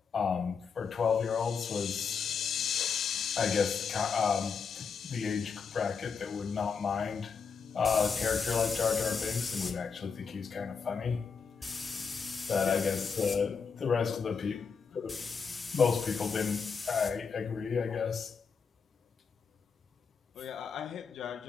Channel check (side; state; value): right; quieter; 5.8 dB